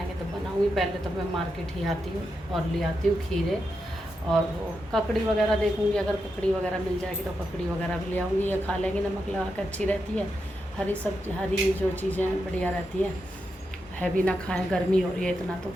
तो बनाऊँगी। पहले तो मैं मार्केट ही आती हूँ और ले आती हूँ खीरे, और वो ककड़ी वगैरह देखूँगी, अगर ककड़ी वगैरह मिल जाएगी तो ककड़ी वगैरह भी ले आऊँगी। ये खा लेंगे, नमक लगा कर, अच्छी रहती है। हरी सब्जी, हरी जो चीज़ें बढ़िया रहती हैं, हैवी ना खाएं, गर्मी हो रही है इतना, तो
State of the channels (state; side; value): normal; both; correlation 0.86